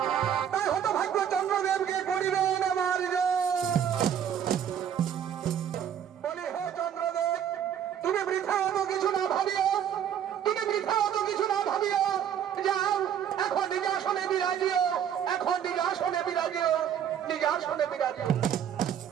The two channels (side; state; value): left; quieter; 9.1 dB